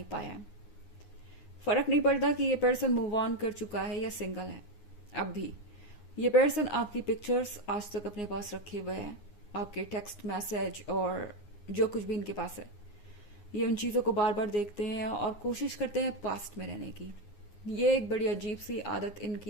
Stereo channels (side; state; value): right; late; 9.6 ms